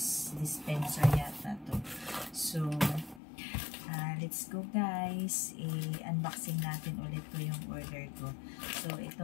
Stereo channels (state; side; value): drops out; right; at 3.2 s